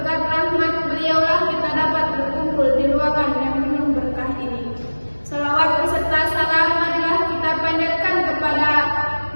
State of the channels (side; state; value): both; inverted; correlation -1.00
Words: rahmat beliaulah kita dapat berkumpul di ruangan yang penuh berkah ini. Salawat beserta salam marilah kita panjatkan kepada